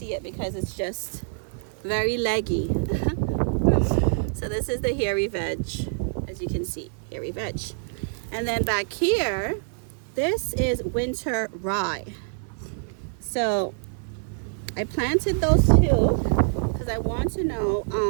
it because it's just very leggy. So this is the hairy veg, as you can see, hairy veg. And then back here, this is winter rye. So I planted those 2 because I want to know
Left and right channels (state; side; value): silent; left; 57 dB below the other